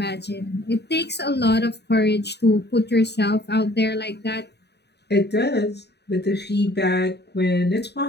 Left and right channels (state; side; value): late; right; 0.49 ms